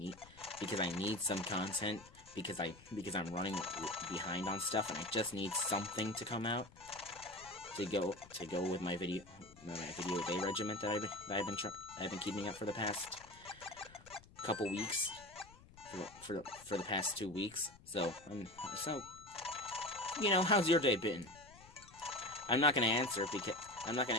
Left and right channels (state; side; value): noise; left; rumble, 22 dB below the sound